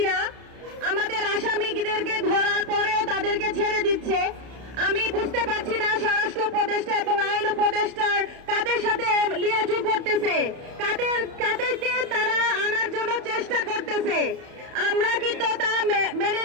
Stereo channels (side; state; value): left; late; 31 ms